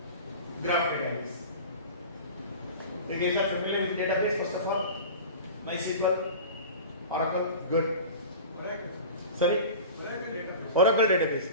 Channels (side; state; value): both; inverted; correlation -0.35